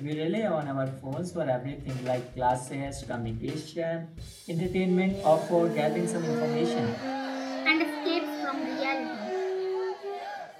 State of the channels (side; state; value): both; identical; correlation 1.00